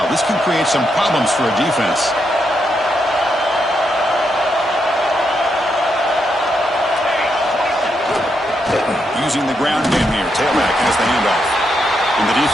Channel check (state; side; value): normal; both; correlation 0.81